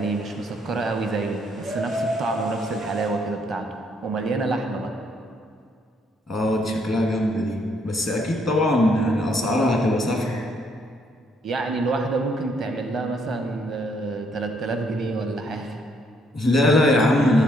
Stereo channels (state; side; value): normal; both; correlation 0.70